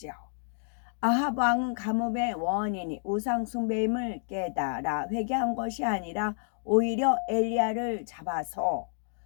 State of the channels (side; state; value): right; silent; digital silence